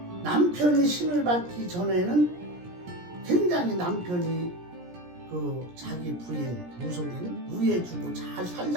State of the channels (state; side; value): late; left; 17 ms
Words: 남편이 신을 받기 전에는 굉장히 남편이 자기 부인 무속인 우애해주고 잘